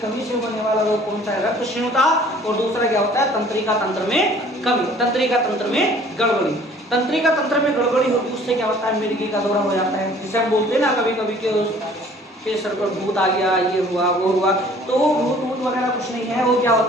से होने वाला रोग कौन सा है? रक्त क्षीणता, और दूसरा क्या होता है? तंत्रिका तंत्र में कमी, तंत्रिका तंत्र में गड़बड़ी। तंत्रिका तंत्र में गड़बड़ी होगी, उससे क्या होता है? मिर्गी का दौरा हो जाता है, जिसे हम बोलते हैं ना कभी कभी के सर पर भूत आ गया, ये हुआ वो हुआ। तो भूत वगैरह कुछ नहीं है, वो क्या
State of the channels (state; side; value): normal; both; correlation 0.53